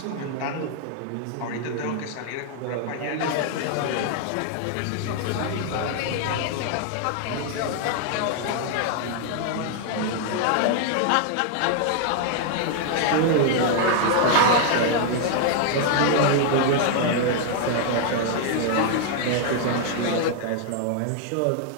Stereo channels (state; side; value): different; both; correlation 0.00